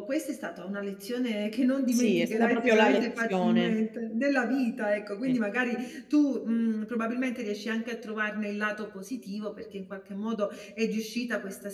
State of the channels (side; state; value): both; identical; correlation 1.00